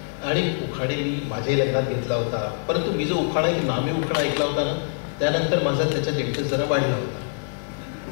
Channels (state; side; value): silent; right; digital silence